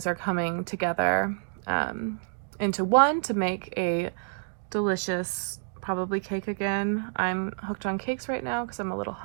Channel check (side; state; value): left; silent; digital silence